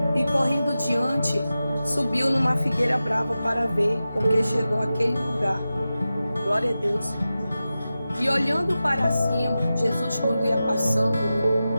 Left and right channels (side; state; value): both; inverted; correlation -0.94